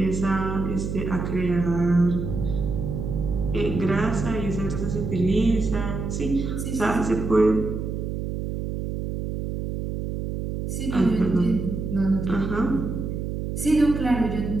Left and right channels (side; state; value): right; noise; hum, 4 dB below the sound